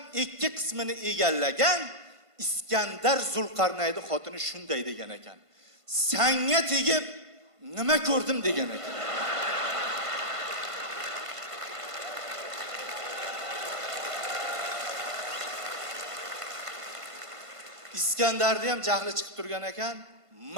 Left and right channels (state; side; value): late; left; 1.5 ms